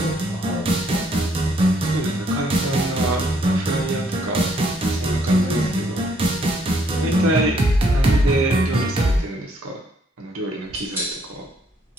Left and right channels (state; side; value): normal; both; correlation 0.68